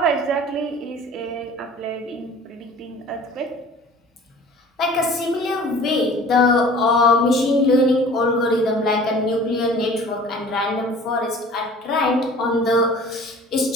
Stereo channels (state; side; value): normal; both; correlation 0.46